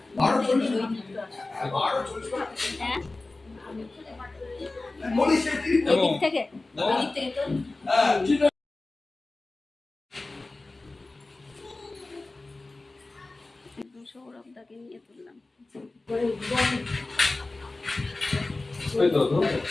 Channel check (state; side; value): quieter; right; 3.2 dB